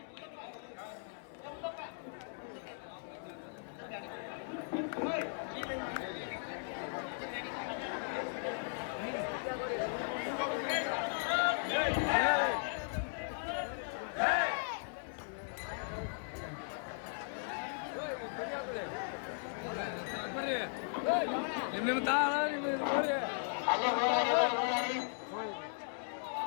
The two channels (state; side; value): silent; right; digital silence